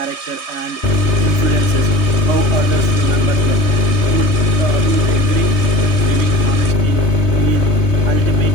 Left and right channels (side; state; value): right; late; 3.2 ms